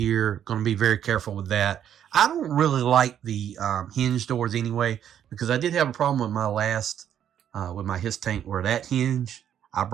Going to be very careful with that. I don't really like the hinge doors anyway, because I did have a problem with my last, with my His tank, where that hinge, I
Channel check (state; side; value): quieter; left; 9.7 dB